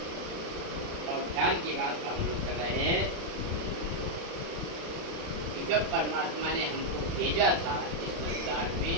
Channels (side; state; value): left; late; 36 ms